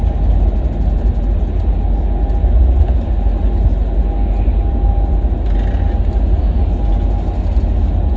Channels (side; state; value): both; identical; correlation 1.00